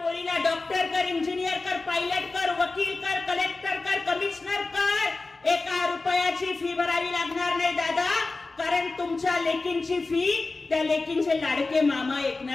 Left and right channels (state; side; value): quieter; right; 3.5 dB